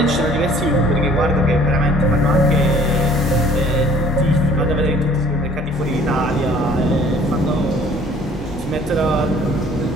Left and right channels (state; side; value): normal; both; correlation 0.54